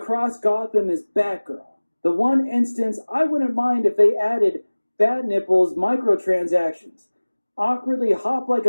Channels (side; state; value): both; inverted; correlation -1.00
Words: Gotham as Batgirl. The one instance I wouldn't mind if they added Bat Nipples microtransactions. Awkwardly hop like